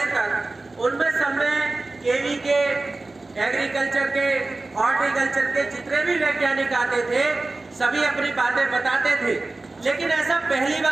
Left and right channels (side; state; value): left; quieter; 3.2 dB